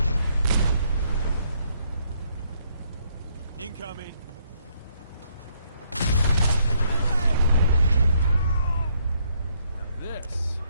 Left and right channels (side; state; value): both; inverted; correlation -0.70